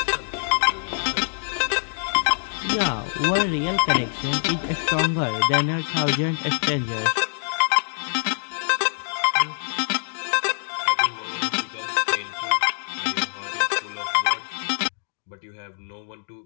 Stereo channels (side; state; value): right; silent; digital silence